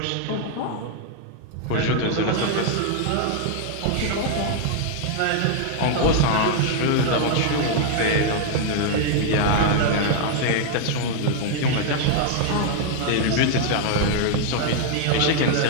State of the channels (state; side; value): different; both; correlation 0.00